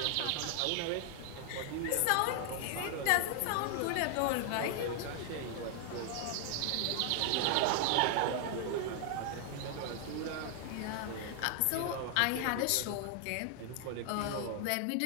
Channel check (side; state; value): both; different; correlation 0.00